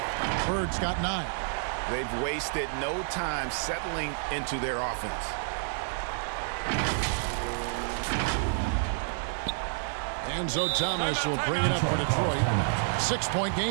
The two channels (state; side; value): silent; left; 58 dB below the other